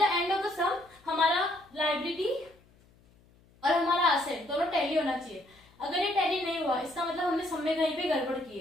end of the sum हमारा लाइबिलिटी और हमारा असेट दोनों टैली होना चाहिए। अगर ये टैली नहीं हुआ, इसका मतलब हमने सम में कहीं पे गड़बड़ की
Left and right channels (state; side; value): noise; left; hum, 30 dB below the sound